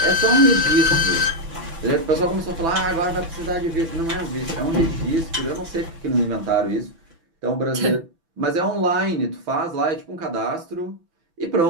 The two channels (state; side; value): late; left; 6.0 ms